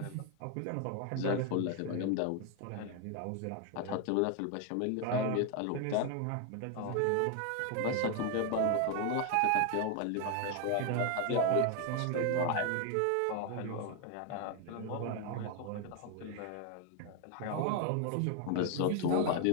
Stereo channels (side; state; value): both; different; correlation 0.01